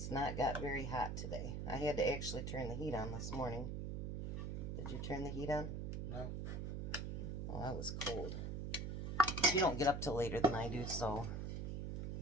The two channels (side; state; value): right; noise; hum, 3 dB below the sound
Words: not got very hot today. I had to actually turn the heat on this morning. Did you turn the heat on? No. Oh, that was cold. You don't get up till later than I do, so